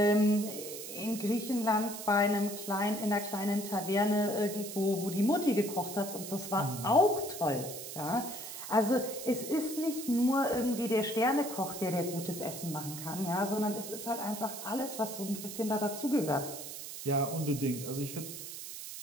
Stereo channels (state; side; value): noise; right; hiss, 9 dB below the sound